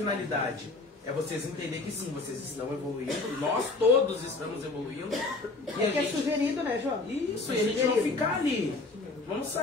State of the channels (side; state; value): right; quieter; 3.4 dB